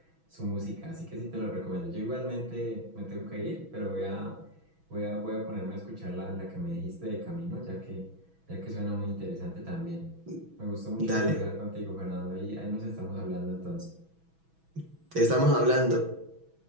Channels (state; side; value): late; left; 6.1 ms